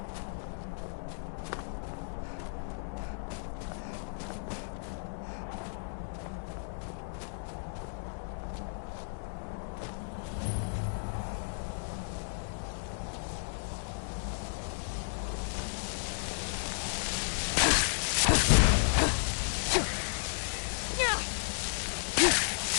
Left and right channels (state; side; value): silent; right; digital silence